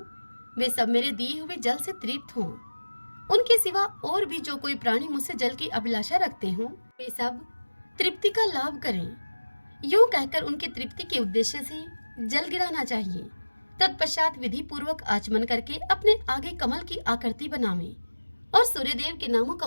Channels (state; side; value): inverted; both; correlation -1.00